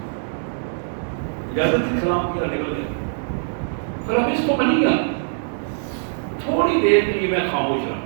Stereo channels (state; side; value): silent; left; digital silence